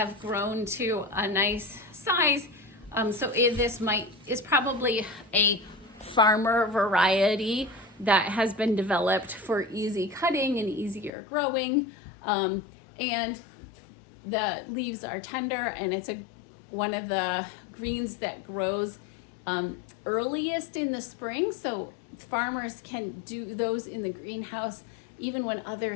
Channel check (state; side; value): drops out; right; at 11.1 s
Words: grown to a nice size. So this is probably a farmer variety that has been developed for easy cutting and easier growing. And the leaves are tender, and it's one of the greens that grows earliest in the spring. So farmers can do those in the greenhouse even when other